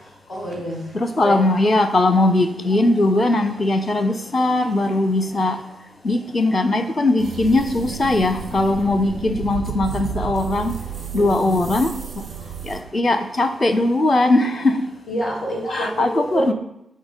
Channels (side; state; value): both; normal; correlation 0.81